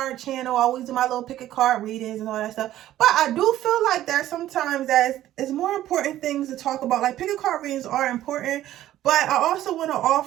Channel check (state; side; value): quieter; left; 13.4 dB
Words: channel. I always do my little pick a card readings and all that stuff. But I do feel like there's sometimes it's more important things to talk about. Like, pick a card readings are important, but I also want to